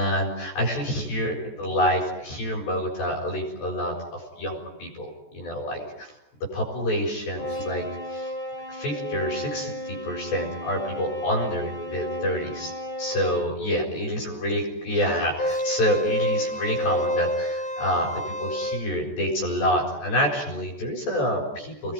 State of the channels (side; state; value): right; late; 14 ms